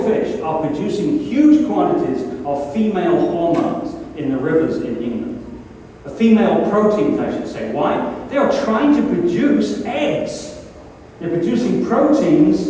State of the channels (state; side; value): identical; both; correlation 1.00